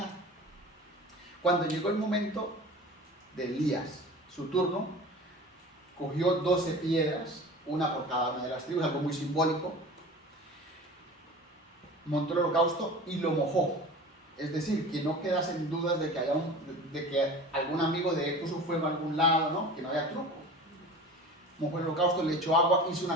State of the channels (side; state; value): both; normal; correlation 0.37